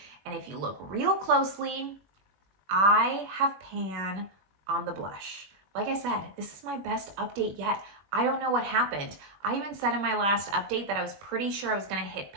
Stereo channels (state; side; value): late; left; 20 ms